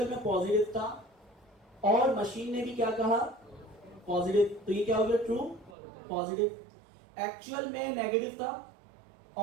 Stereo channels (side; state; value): left; drops out; at 5.8 s